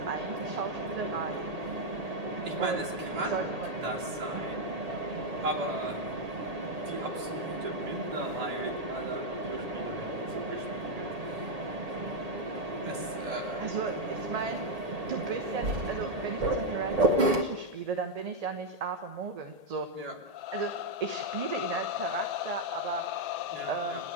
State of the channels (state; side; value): late; left; 1.8 ms